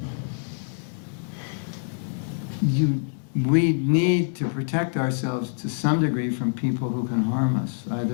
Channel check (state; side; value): silent; right; 61 dB below the other